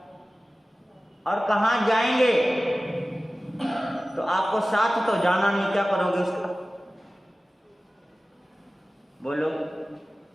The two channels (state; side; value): normal; both; correlation 0.97